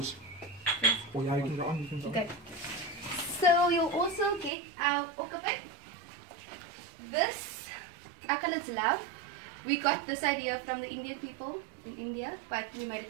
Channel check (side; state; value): left; drops out; at 4.5 s